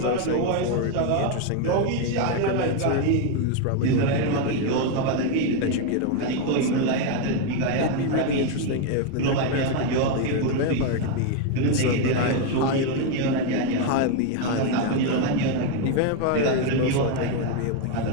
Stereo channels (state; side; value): different; both; correlation 0.01